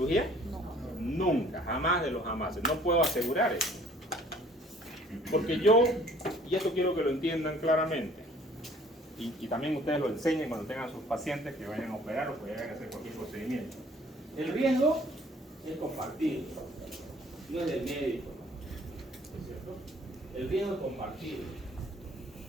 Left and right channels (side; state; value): both; normal; correlation 0.56